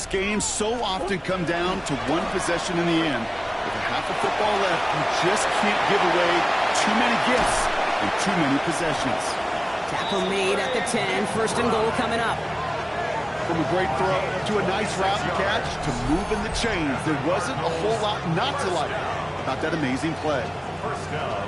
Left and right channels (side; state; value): both; identical; correlation 1.00